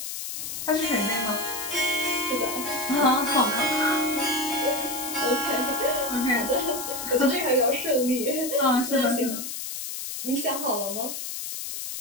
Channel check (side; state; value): left; noise; hiss, 6 dB below the sound